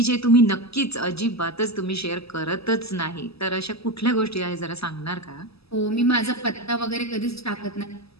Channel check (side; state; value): right; late; 0.78 ms